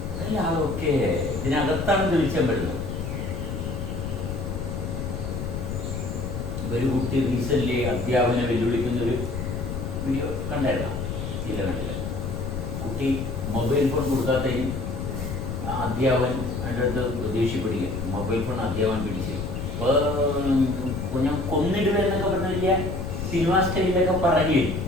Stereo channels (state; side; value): noise; left; rumble, 5 dB below the sound